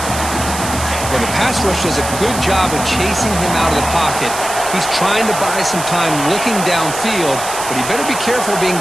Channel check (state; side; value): noise; right; hiss, 7 dB below the sound